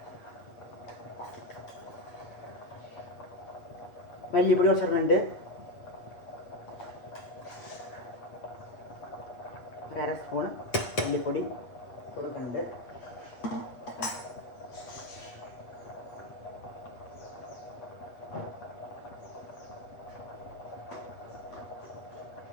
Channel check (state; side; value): late; right; 8.0 ms